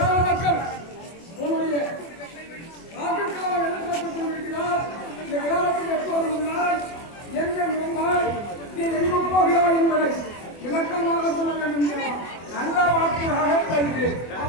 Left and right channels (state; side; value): late; right; 24 ms